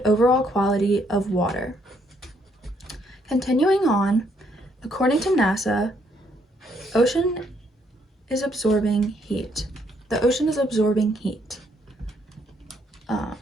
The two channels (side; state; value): both; normal; correlation 0.70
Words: overall quality of water. Continuing on, according to NASA, ocean is absorbing heat. The ocean is absorbing heat.